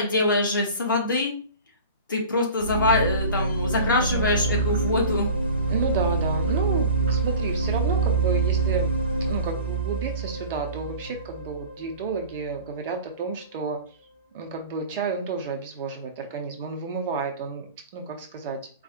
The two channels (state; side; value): inverted; both; correlation -0.39